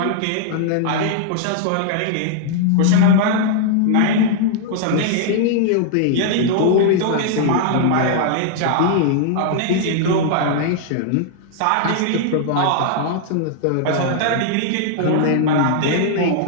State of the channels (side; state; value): both; different; correlation -0.01